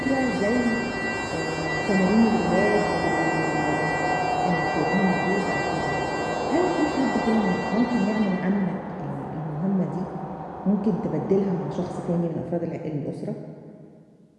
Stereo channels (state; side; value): identical; both; correlation 1.00